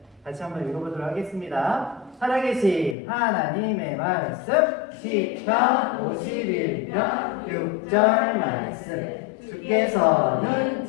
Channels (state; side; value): drops out; right; at 3.0 s